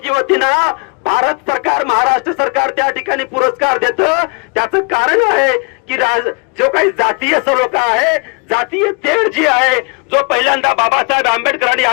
युवतींना भारत सरकार, महाराष्ट्र सरकार त्या ठिकाणी पुरस्कार देतं. त्याचं कारण आहे की जो काही जातीय सलोखा आहे, जातीय तेढ जी आहे, जो पहिल्यांदा बाबासाहेब आंबेडकरांनी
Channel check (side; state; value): right; quieter; 31.5 dB